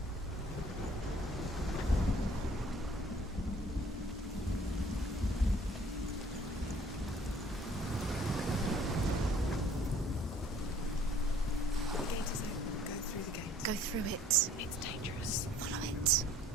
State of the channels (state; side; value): normal; both; correlation 0.56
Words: Go through it. It's dangerous. Follow it.